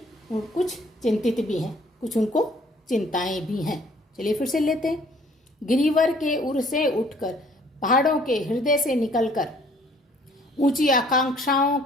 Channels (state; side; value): normal; both; correlation 0.58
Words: कुछ चिंतित भी हैं, कुछ उनको चिंताएं भी हैं। चलिए फिर से लेते हैं। गिरिवर के उर से उठकर, पहाड़ों के हृदय से निकलकर, ऊंची आकांक्षाओं